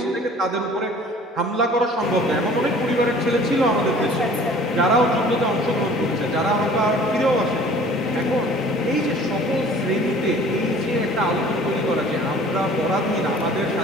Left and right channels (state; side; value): normal; both; correlation 0.49